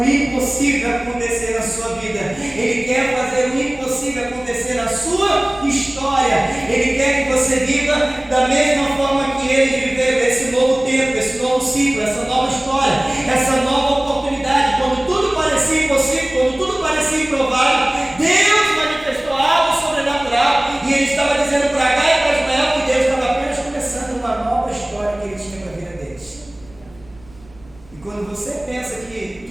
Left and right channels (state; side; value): noise; right; rumble, 25 dB below the sound